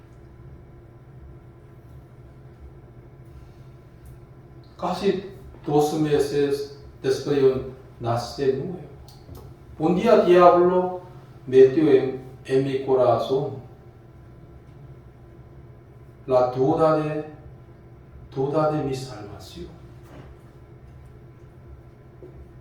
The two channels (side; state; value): both; identical; correlation 1.00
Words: Casi 2 meses después yo nací de nuevo. Un día el diablo metió en mi corazón la duda de mi salvación.